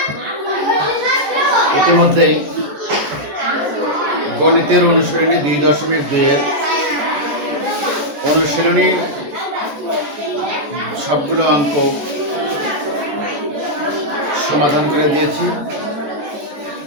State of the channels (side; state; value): left; late; 14 ms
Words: ইতিমধ্যেই গণিতের অনুশীলনী 2.2 অনুশীলনী সবগুলো অঙ্ক সমাধান করে দিয়েছি।